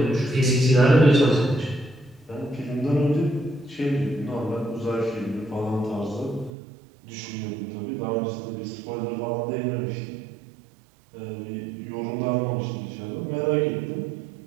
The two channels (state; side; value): drops out; left; at 6.5 s